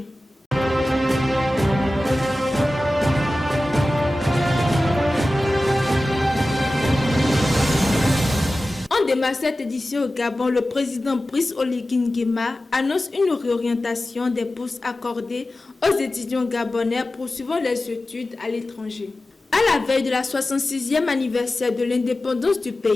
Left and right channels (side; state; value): both; normal; correlation 0.95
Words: On démarre cette édition au Gabon. Le président Brice Oligui Nguema annonce une réorientation des bourses accordées aux étudiants gabonais poursuivant les études à l'étranger. À la veille de la 66e anniversaire de l'indépendance du